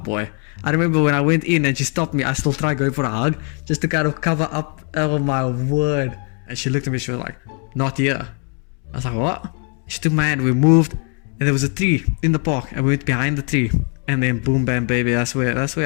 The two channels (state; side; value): quieter; right; 39.8 dB